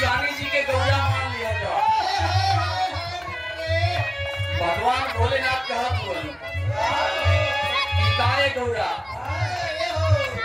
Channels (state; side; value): identical; both; correlation 1.00